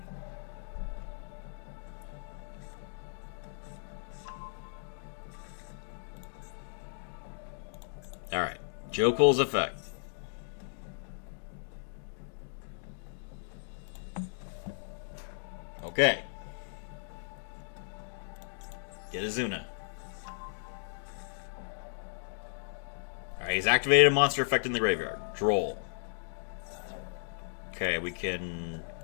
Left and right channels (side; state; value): right; silent; digital silence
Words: Alright. Joe Cole's effect. Okay. Get Azuna. Alright, he's activated a monster effect in the graveyard. Droll. Okay, we can